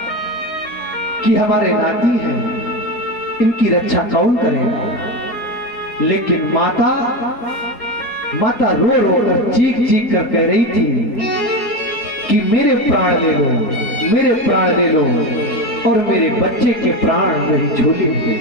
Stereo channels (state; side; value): late; right; 4.3 ms